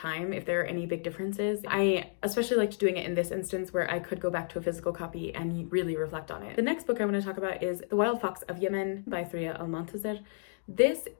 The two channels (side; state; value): right; silent; digital silence